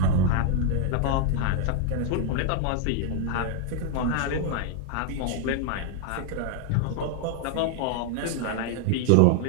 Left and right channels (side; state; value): both; different; correlation 0.00